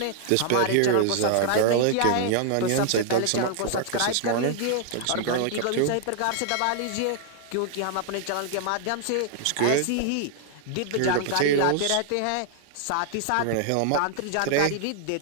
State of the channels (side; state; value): both; different; correlation 0.00